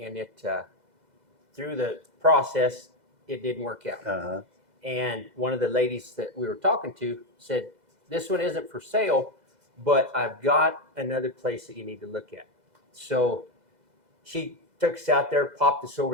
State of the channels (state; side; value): late; left; 2.0 ms